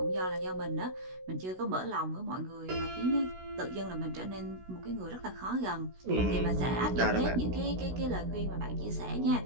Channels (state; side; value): late; left; 16 ms